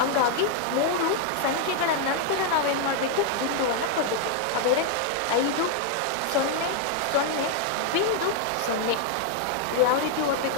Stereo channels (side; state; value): both; different; correlation 0.00